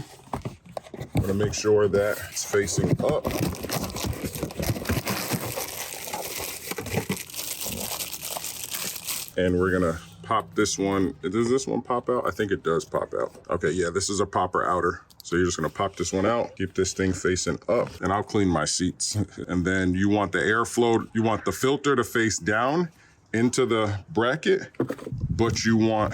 I'm gonna make sure that it's facing up. And we're gonna pop this one. Does this one pop out? I think it does pop out. Okay, yeah, this is a popper outer. So you're just gonna pop this one out, keep this thing facing up, and I'll clean my seats. And then you want the airflow, you want the filter to face down into the bracket, but you want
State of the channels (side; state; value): both; identical; correlation 1.00